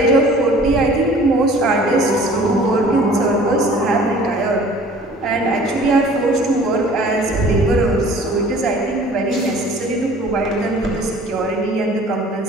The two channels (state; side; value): normal; both; correlation 0.49